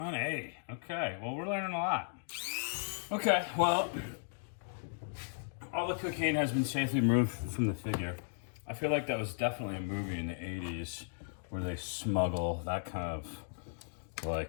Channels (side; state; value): right; silent; digital silence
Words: Okay, well, we're learning a lot. Okay, well, all the cocaine has been safely removed from the figure. I feel like that was definitely a movie in the 80s where they smuggle that kind of